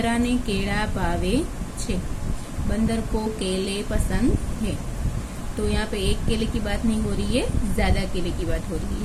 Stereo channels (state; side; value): identical; both; correlation 1.00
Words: ने केला भावे छे। बंदर को केले पसंद है। तो यहाँ पे एक केले की बात नहीं हो रही है, ज्यादा केले की बात हो रही है,